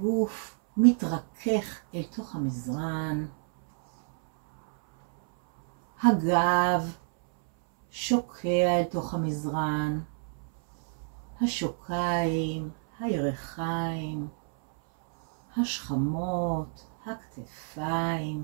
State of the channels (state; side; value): silent; left; 59 dB below the other